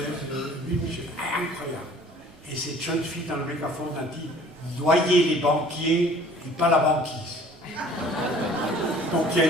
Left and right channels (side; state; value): both; normal; correlation 0.51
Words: 8000 jeunes, incroyable. Et cette jeune fille dans le mégaphone a dit « Noyez les banquiers et pas la banquise ». Donc il y a